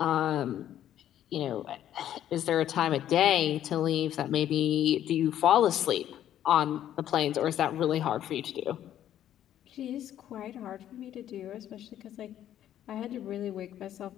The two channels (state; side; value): quieter; right; 11.3 dB